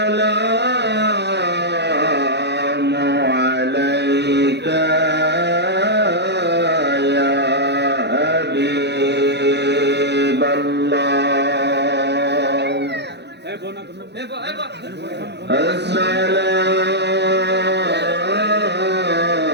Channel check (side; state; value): left; late; 0.50 ms